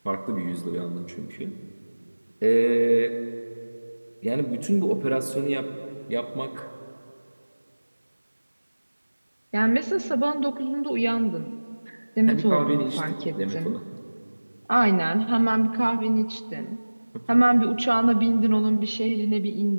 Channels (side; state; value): both; inverted; correlation -1.00